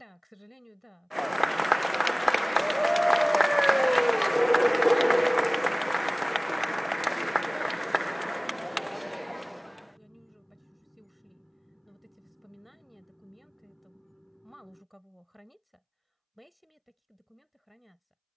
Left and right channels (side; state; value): both; identical; correlation 1.00